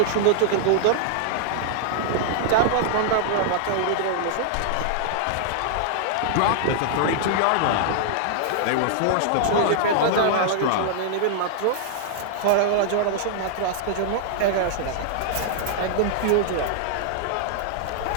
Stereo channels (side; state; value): both; different; correlation -0.01